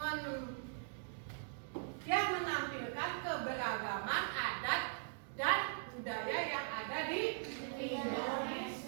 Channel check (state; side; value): silent; left; digital silence